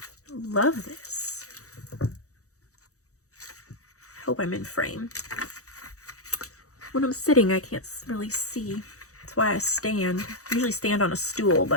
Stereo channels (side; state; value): right; late; 0.65 ms